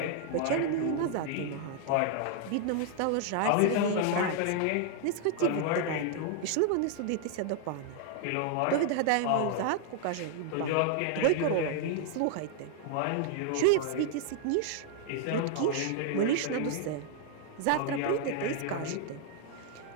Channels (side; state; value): both; different; correlation 0.00